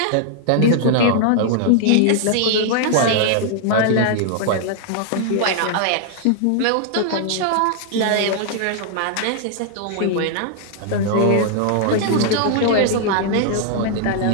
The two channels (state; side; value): different; both; correlation 0.00